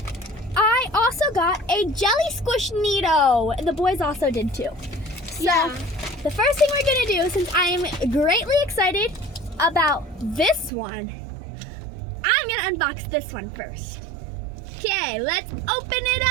I also got a jelly squish Neato. The boys also did too. So the first thing we're gonna do, since I am greatly excited about this one, I'm gonna unbox this one first. Okay, let's open it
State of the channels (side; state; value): left; drops out; at 10.7 s